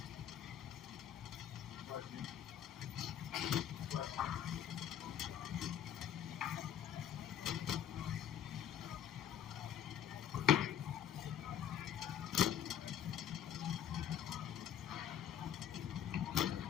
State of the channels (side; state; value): right; quieter; 9.8 dB